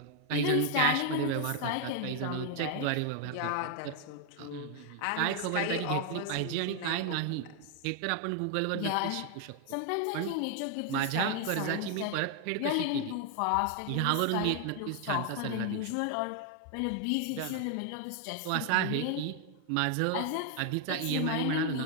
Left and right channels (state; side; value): different; both; correlation 0.00